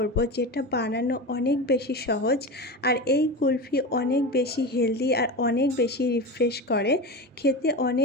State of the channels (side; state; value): both; normal; correlation 0.24